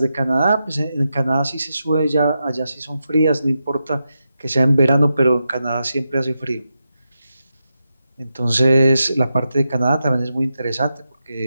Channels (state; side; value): inverted; both; correlation -0.88